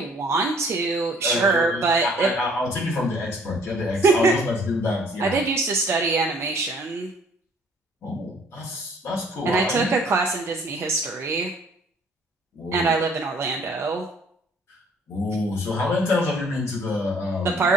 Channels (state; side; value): normal; both; correlation 0.58